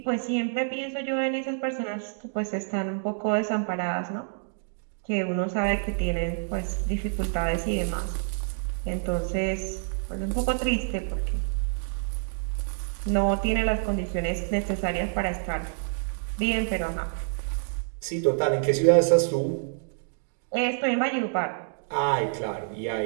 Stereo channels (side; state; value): left; silent; digital silence